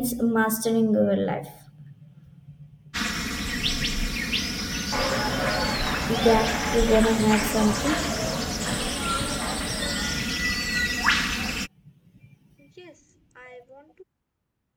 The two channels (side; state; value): both; identical; correlation 1.00